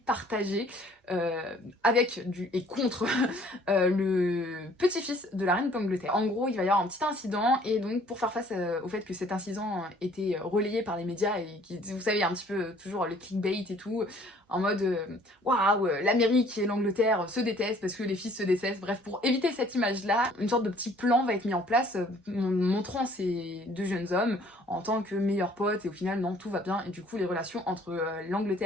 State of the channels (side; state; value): both; normal; correlation 0.57